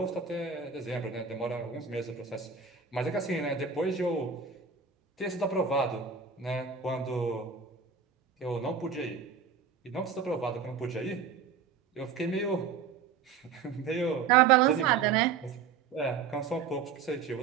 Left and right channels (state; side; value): quieter; left; 6.2 dB